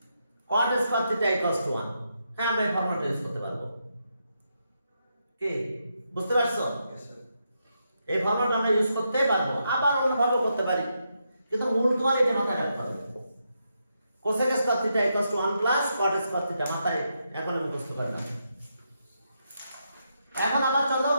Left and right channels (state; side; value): inverted; both; correlation -0.82